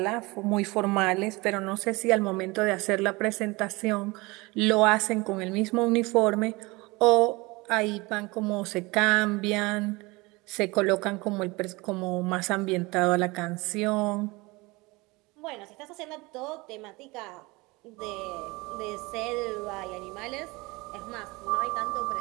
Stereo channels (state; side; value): quieter; left; 23.9 dB